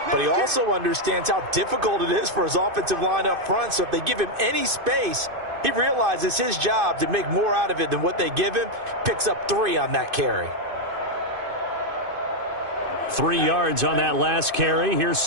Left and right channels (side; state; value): left; late; 2.5 ms